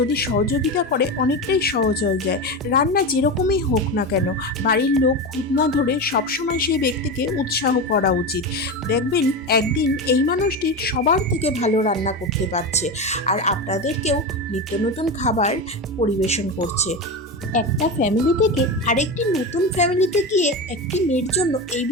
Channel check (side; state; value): both; normal; correlation 0.20